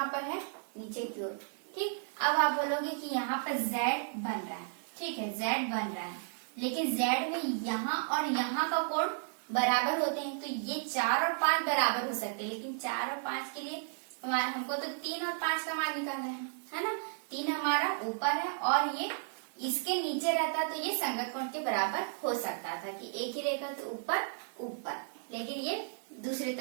पर है नीचे की ओर। ठीक, अब आप बोलोगे कि यहाँ पर Z बन रहा है। ठीक है, Z बन रहा है, लेकिन Z में यहाँ और यहाँ का कोण बराबर होते हैं। तो ये 4 और 5 बराबर हो सकते हैं, लेकिन 4 और 5 के लिए हमको तो 3 और 5 का मान निकालना है ना। 3 हमारा ऊपर है और ये इसके नीचे रहता तो ये संगत कोण के बराबर हो सकता था कि एक ही रेखा तो ऊपर, लेकिन ये दूसरी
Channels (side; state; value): left; silent; digital silence